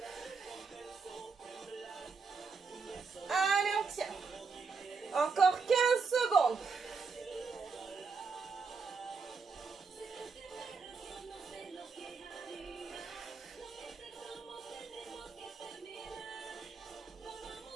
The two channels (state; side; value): quieter; left; 4.9 dB